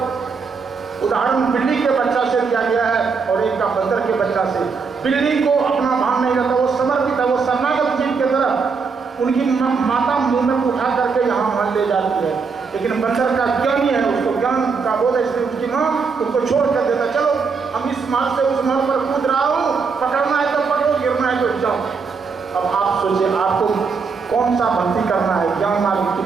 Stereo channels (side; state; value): left; quieter; 5.2 dB